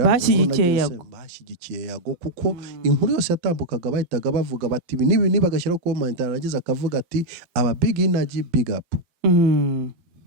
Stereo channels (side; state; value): left; late; 12 ms